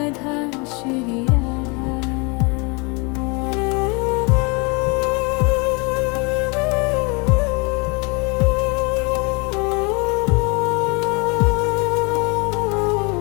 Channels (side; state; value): right; quieter; 30.3 dB